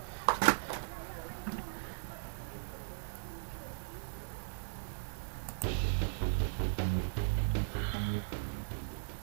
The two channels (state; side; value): silent; left; digital silence